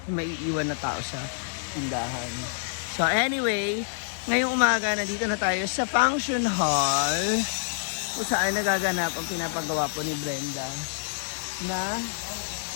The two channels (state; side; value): silent; right; digital silence